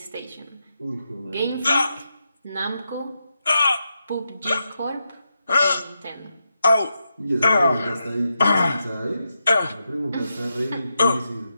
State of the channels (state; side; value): inverted; both; correlation -0.86